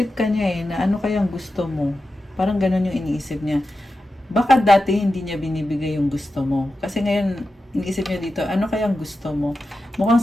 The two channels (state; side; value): normal; both; correlation 0.91